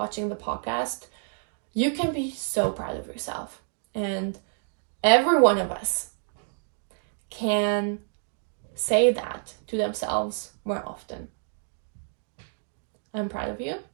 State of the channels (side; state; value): left; silent; 56 dB below the other